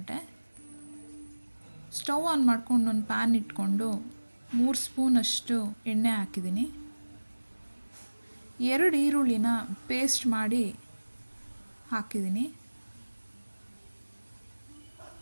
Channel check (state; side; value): inverted; both; correlation -1.00